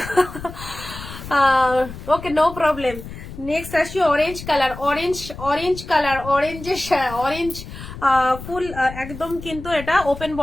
ওকে নো প্রবলেম। নেক্সট আসি orange colour, orange orange colour, অরেঞ্জের অরেঞ্জ ফুল একদম, কিন্তু এটা ওপেন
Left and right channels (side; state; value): left; noise; rumble, 12 dB below the sound